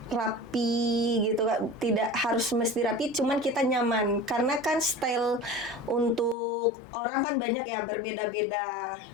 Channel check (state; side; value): drops out; right; at 6.4 s